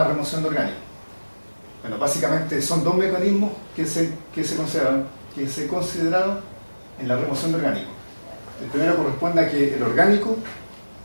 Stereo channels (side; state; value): both; inverted; correlation -1.00